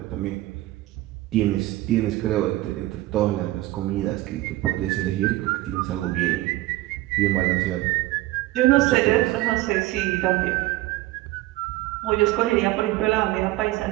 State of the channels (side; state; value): left; quieter; 17.5 dB